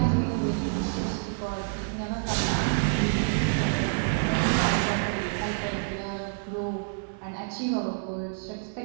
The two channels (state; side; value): silent; left; digital silence